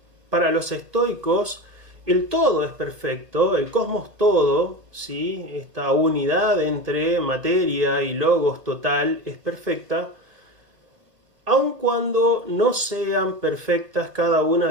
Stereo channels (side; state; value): left; late; 1.8 ms